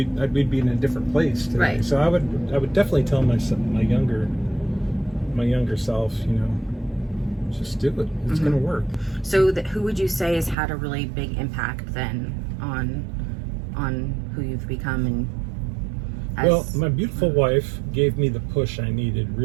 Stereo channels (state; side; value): drops out; left; at 10.6 s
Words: be in a different place today. Right. So I would definitely tell my younger self, just do it. It's going to work. So who would you say has had a really big impact then on who you've become? And well, my beautiful wife gave me the push I needed,